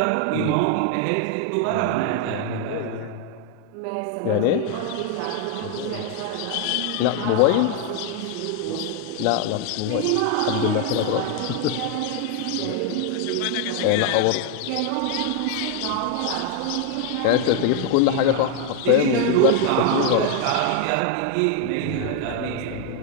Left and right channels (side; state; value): both; different; correlation 0.00